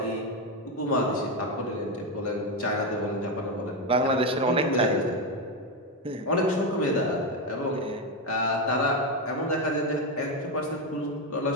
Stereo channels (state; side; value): normal; both; correlation 0.09